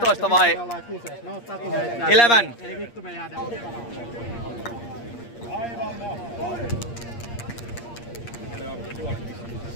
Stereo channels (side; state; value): right; late; 8.6 ms